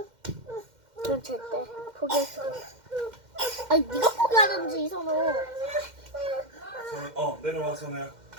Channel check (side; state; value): left; late; 2.1 ms